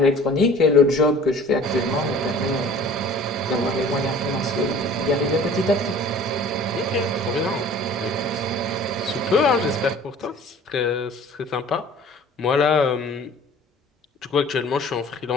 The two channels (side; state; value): both; normal; correlation 0.47